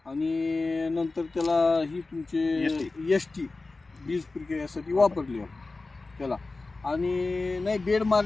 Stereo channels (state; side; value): quieter; right; 3.5 dB